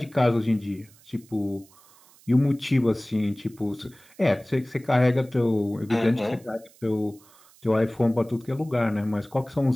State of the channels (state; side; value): noise; right; hiss, 27 dB below the sound